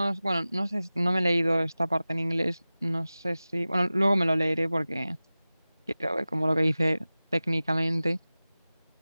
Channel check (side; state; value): both; inverted; correlation -0.97